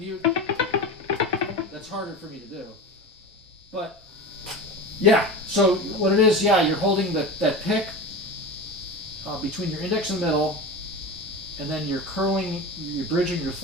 That's harder for me to do. But yeah, so what it is, yeah, you're holding that pick between your index and middle, and then you're bridging your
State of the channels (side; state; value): both; normal; correlation 0.28